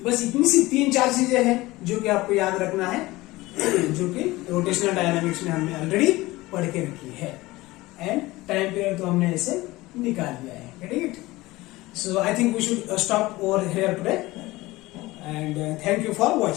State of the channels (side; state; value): right; quieter; 19.6 dB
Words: बस इतनी सी 3-4 चीजें हैं जो कि आपको याद रखना है, जो कि रोटेशनल डायनामिक्स में हमने ऑलरेडी पढ़ के रखी है। एंड टाइम पीरियड तो हमने ऐसे निकाल लिया है। Getting it? So I think we should stop over here today, and thank you for